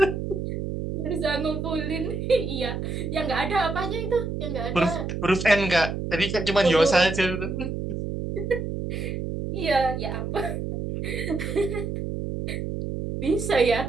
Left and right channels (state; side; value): noise; right; hum, 4 dB below the sound